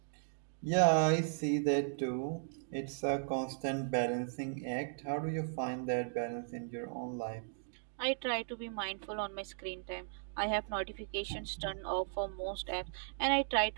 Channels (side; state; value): left; silent; digital silence